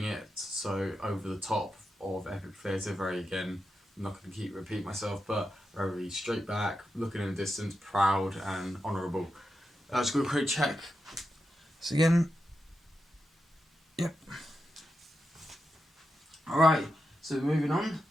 it so over the top of epic theatre. Very again, I'm not going to repeat myself, but very straight back, looking in the distance, proud and honourable. Just going to quick check. So again, yep. Alright, so moving on.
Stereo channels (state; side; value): normal; both; correlation 0.88